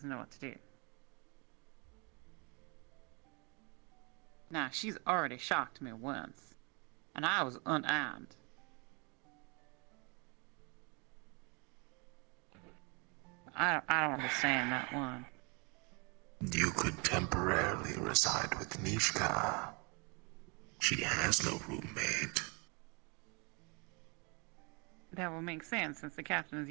know what to do. Now, she's already shocked me once, and I was unarmed. I don't understand that one. You could temporarily reside with Nishka. She has no roommate. That will make sense since the captain is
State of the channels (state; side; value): quieter; left; 31.4 dB